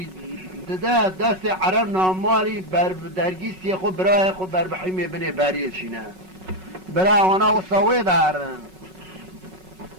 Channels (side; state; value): left; late; 5.4 ms